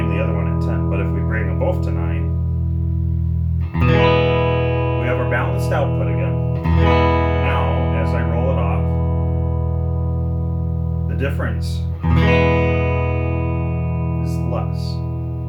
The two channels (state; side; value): identical; both; correlation 1.00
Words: the other one at 10. But if we bring them both to 9, we have our balanced output again. Now, as I roll it off, the difference is less.